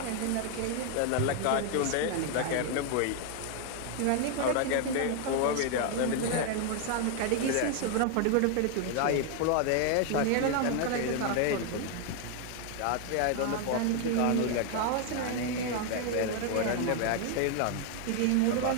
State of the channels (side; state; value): both; different; correlation 0.00